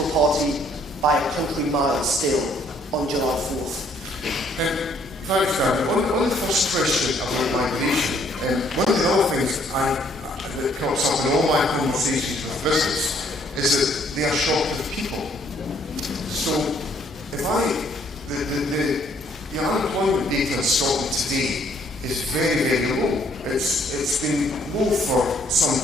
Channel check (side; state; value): both; normal; correlation 0.65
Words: party by a country mile still on July 4th? Thanks, David. On the first question about migration, one of the other things that comes up in all my conversations with business is that they are short of people. So, the unemployment data in Scotland today is very, very low. It's been low for some